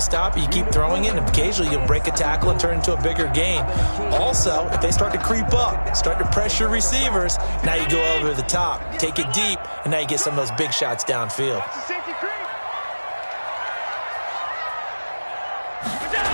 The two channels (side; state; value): both; inverted; correlation -1.00